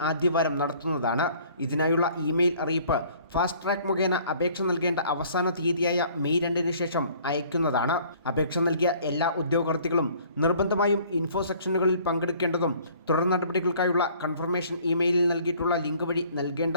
ആദ്യവാരം നടത്തുന്നതാണ്. ഇതിനായുള്ള ഇമെയിൽ അറിയിപ്പ് ഫാസ്റ്റ് ട്രാക്ക് മുഖേന അപേക്ഷ നൽകേണ്ട അവസാന തീയതിയായ മെയ് 2-ന് ശേഷം അയക്കുന്നതാണ്. അപേക്ഷ നൽകിയ എല്ലാ ഉദ്യോഗാർത്ഥികളും നിർബന്ധമായും ഇൻഫോ സെക്ഷനുകളിൽ പങ്കെടുക്കേണ്ടതും തുടർ നടപടികൾക്കായുള്ള കൺഫർമേഷൻ ഇമെയിലിൽ നൽകിയിട്ടുള്ള ലിങ്ക് വഴി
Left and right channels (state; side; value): inverted; both; correlation -0.55